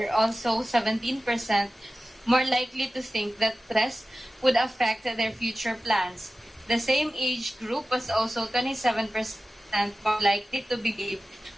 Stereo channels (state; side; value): normal; both; correlation 0.95